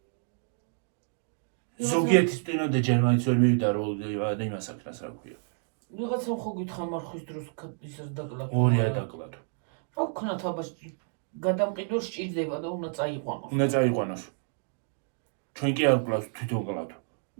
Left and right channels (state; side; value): silent; left; 58 dB below the other